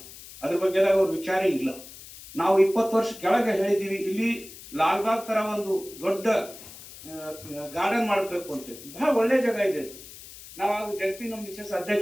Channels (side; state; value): left; noise; hiss, 16 dB below the sound